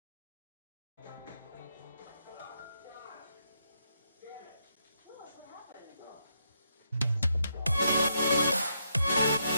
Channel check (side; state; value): both; inverted; correlation -0.79